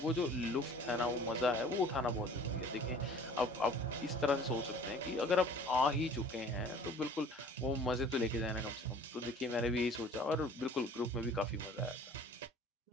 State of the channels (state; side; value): normal; both; correlation 0.49